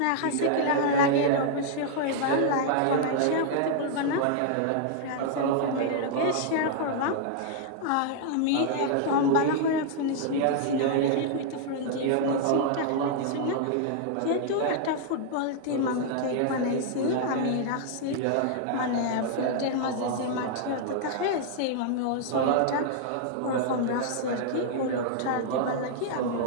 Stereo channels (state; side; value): different; both; correlation -0.01